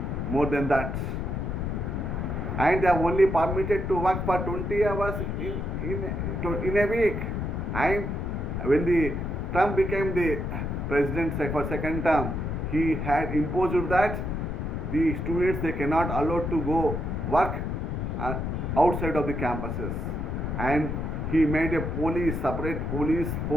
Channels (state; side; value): noise; left; rumble, 2 dB below the sound